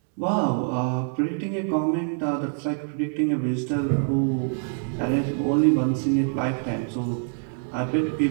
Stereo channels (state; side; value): silent; left; 62 dB below the other